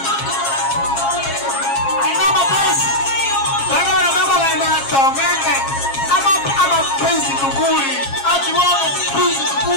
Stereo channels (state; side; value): late; right; 7.4 ms